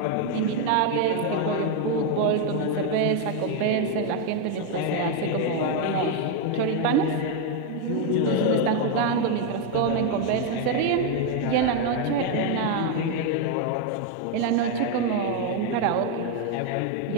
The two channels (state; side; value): different; both; correlation 0.01